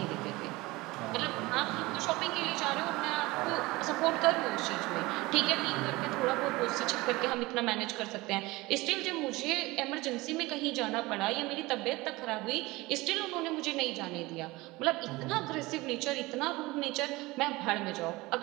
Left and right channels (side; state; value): left; quieter; 21.3 dB